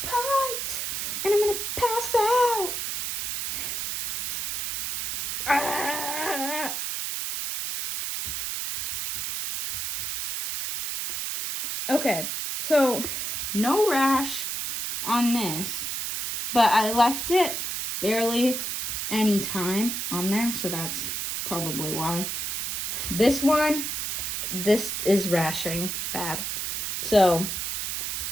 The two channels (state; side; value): noise; right; hiss, 2 dB below the sound